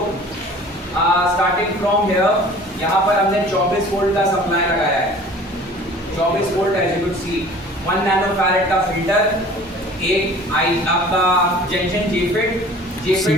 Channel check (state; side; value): normal; both; correlation 0.46